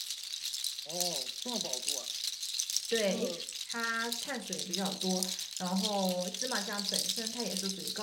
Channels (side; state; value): both; identical; correlation 1.00